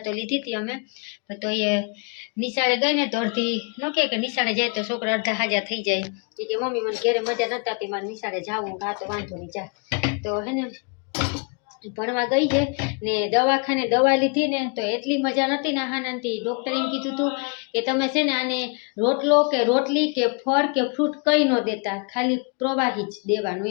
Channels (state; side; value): quieter; right; 35.4 dB